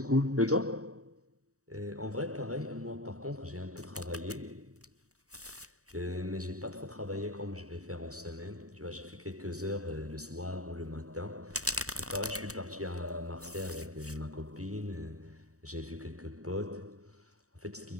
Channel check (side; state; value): left; late; 0.66 ms